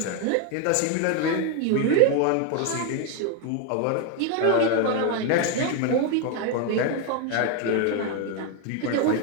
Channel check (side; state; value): both; different; correlation 0.01